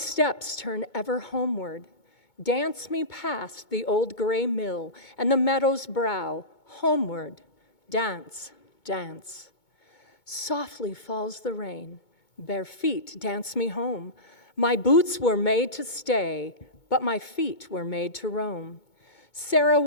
turn ever homeward. Dance me past the old gray mill and the meadow's brow, homeward, dance, dance. Softly falls the rain, bare feet dance me home. My boots were made to stay, but my feet were made to roam. Sarah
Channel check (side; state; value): right; late; 2.2 ms